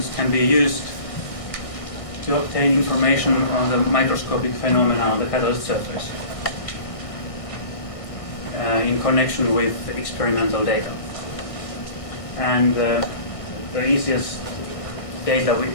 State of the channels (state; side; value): late; right; 1.6 ms